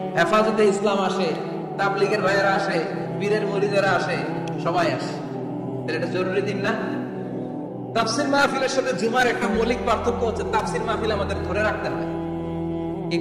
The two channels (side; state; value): both; identical; correlation 1.00